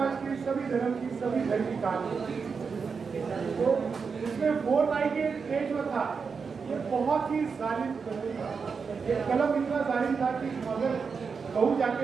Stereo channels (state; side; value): quieter; left; 5.4 dB